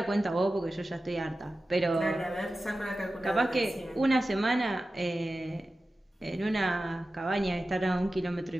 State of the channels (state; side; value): normal; both; correlation 0.94